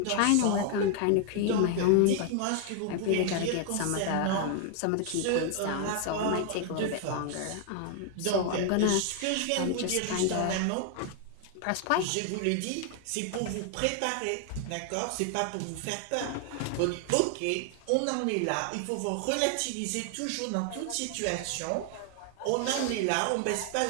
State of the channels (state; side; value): different; both; correlation 0.00